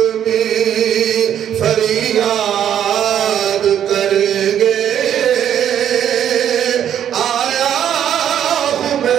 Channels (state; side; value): quieter; left; 9.8 dB